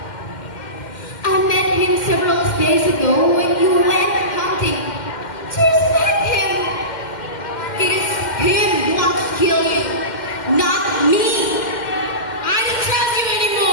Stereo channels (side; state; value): right; late; 2.1 ms